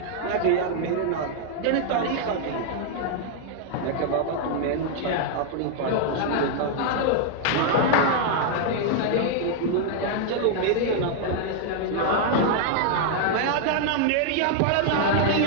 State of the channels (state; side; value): different; both; correlation 0.00